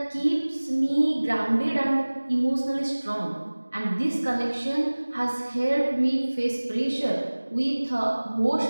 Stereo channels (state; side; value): inverted; both; correlation -1.00